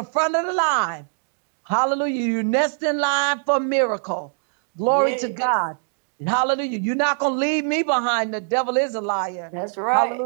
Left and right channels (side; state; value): left; silent; digital silence